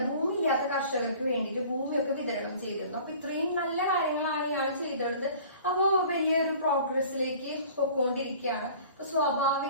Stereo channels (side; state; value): both; inverted; correlation -0.47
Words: ഭൂമി ഇല്ലാത്ത കർഷകർക്ക് വേണ്ടിയിട്ട് ഭൂമിയൊക്കെ വിതരണം ചെയ്തിരുന്നു. അപ്പൊ ഇത്രയും നല്ല കാര്യങ്ങളാണ് ഇയാൾ ചെയ്തിരുന്നത്. അപ്പോ വലിയൊരു പ്രോഗ്രസിലേക്ക് പൊക്കോണ്ടിരിക്കുകയാണ്. അപ്പൊ